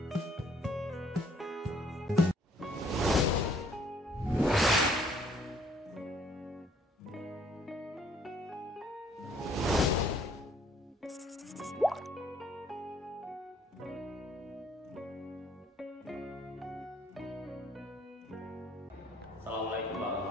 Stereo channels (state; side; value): normal; both; correlation 0.63